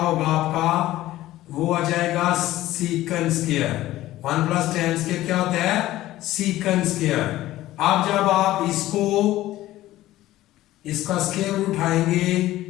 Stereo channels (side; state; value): right; quieter; 15.5 dB